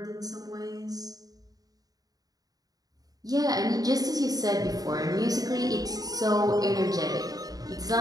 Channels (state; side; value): late; left; 0.18 ms